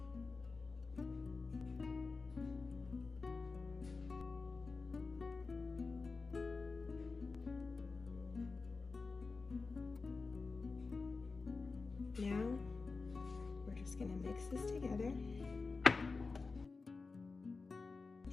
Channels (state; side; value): quieter; right; 4.1 dB